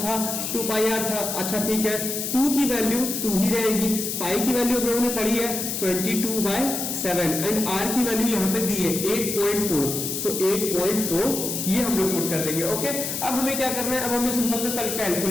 था, 2 पाई आर था। अच्छा ठीक है, 2 की वैल्यू 2 ही रहेगी, पाई की वैल्यू हम लोगों ने पढ़ी है 22/7 एंड आर की वैल्यू यहाँ पे दी है 8.4। सो 8.4 ये हम लोग पुट कर देंगे। ओके, अब हमें क्या करना है, अब हमें सिंपल से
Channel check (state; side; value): noise; left; hiss, 3 dB below the sound